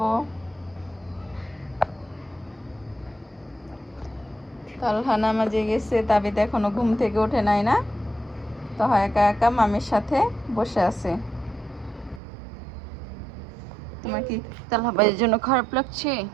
তালহা নামাজে গেছে, তাবিদ এখনো ঘুম থেকে ওঠে নাই না, তো একা একা মামির সাথে বসে আছে। তোমার কি তালহা ভাইয়ের জন্য খারাপ লাগছে?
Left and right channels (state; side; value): drops out; left; at 12.2 s